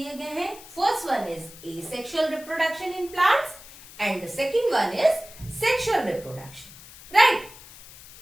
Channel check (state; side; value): noise; left; hiss, 18 dB below the sound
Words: गए हैं. First one is asexual reproduction in plants and the second one is sexual reproduction, right?